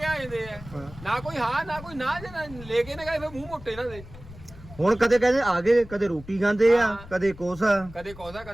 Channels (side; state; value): left; noise; rumble, 17 dB below the sound